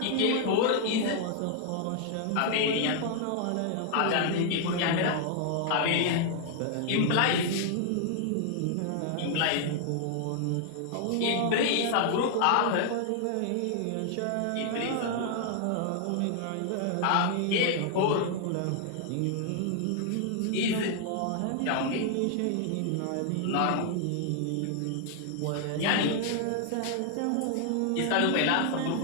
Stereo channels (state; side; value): different; both; correlation 0.00